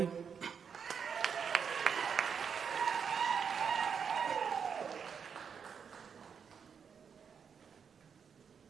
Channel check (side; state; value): left; quieter; 6.7 dB